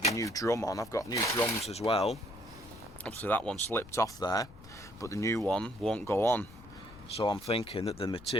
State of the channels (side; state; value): left; noise; rumble, 20 dB below the sound